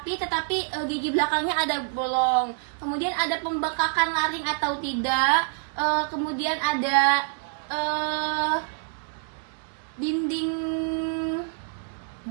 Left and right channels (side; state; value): left; silent; 61 dB below the other